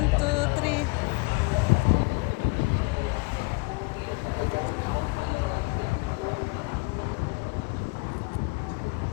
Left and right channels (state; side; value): quieter; right; 27.7 dB